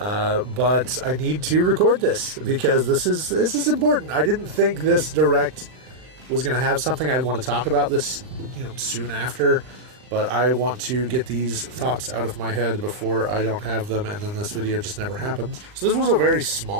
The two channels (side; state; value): left; late; 39 ms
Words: I need to record this because this is important. I didn't think this direct was going to have something I'd want to talk about this, soon after. But I want to get these thoughts out of my head before I don't have them, and then this video just never happens. So this was a very